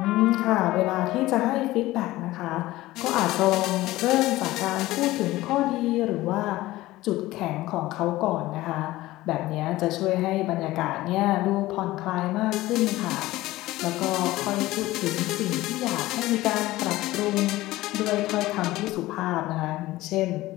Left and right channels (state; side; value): quieter; right; 17.4 dB